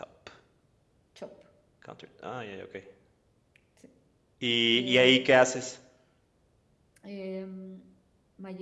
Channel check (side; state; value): both; identical; correlation 1.00